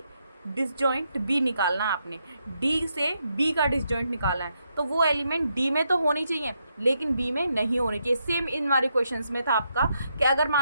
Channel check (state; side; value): inverted; both; correlation -0.80